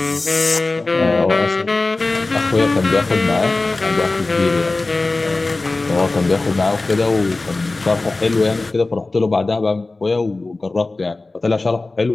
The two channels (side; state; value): right; quieter; 3.3 dB